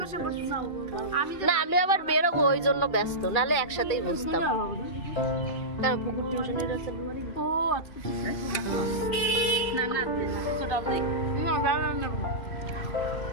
না আমি আবার বেরোবো, ওই জন্য ব্যস্ত, নাহলে একসাথেই বসতাম।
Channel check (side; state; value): right; late; 2.4 ms